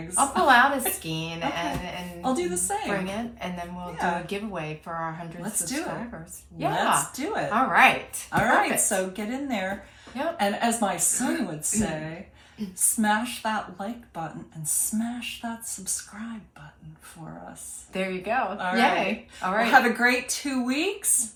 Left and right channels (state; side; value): identical; both; correlation 1.00